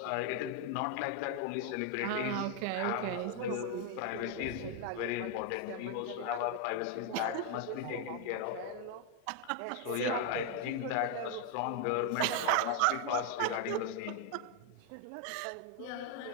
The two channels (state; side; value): different; both; correlation 0.01